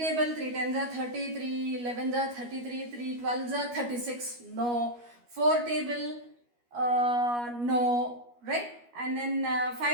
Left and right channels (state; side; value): late; left; 12 ms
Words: 3 tens are 30, 3 11s are 33, 3 12s are 36, no. 4 table, no, right? And then